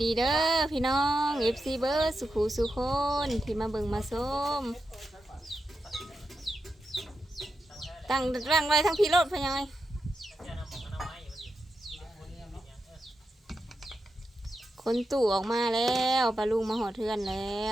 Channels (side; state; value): both; normal; correlation 0.88